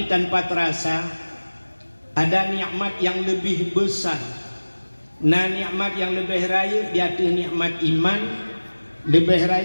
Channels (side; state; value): both; inverted; correlation -1.00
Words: tanpa terasa ada nikmat yang lebih besar. Nah, nikmat yang lebih raya yaitu nikmat iman, lebih